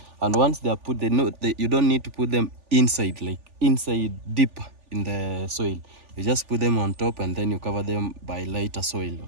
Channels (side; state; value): left; late; 3.4 ms